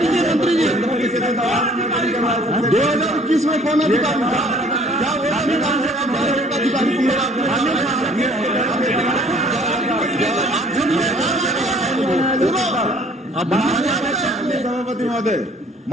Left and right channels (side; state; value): both; normal; correlation 0.55